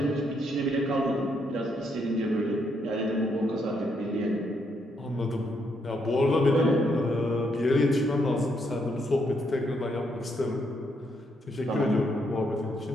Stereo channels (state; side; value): normal; both; correlation 0.75